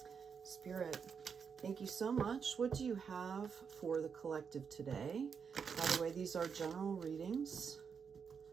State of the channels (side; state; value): left; quieter; 6.4 dB